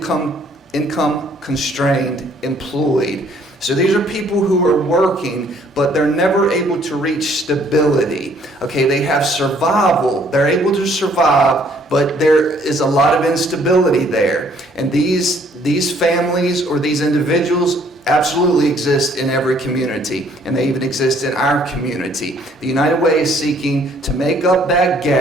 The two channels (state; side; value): normal; both; correlation 0.62